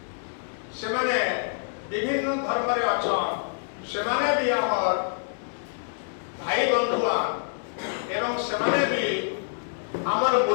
से माने विभिन्न धर्म रे अछन से माने भी हमर भाई बंधुआ एवं से माने भी हमर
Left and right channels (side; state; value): right; silent; digital silence